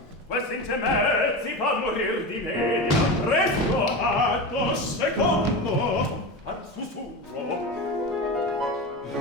questi intermezzi fa morir di media presto atto secondo al sussurro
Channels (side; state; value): both; normal; correlation 0.24